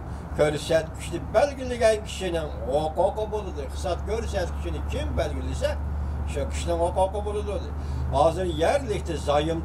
göstergesi belgeleyen kişinin hukuku buludur. Saat göstergesini kim belgelese şu kişinin hukuku buludur. Hazır yerlikte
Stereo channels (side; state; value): both; identical; correlation 1.00